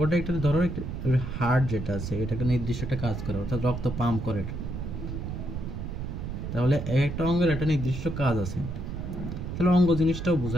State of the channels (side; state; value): right; noise; rumble, 6 dB below the sound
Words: একটা, ধরো হার্ট যেটা আছে এটাকে নির্দিষ্ট একটা কাজ করে, অর্থাৎ রক্ত পাম্প করে। তাহলে একটা অঙ্গের একটা নির্দিষ্ট কাজ আছে, তাহলে অঙ্গ জিনিসটাও